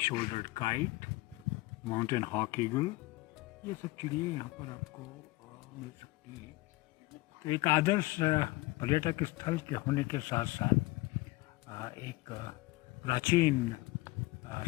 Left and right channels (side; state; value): right; quieter; 21.1 dB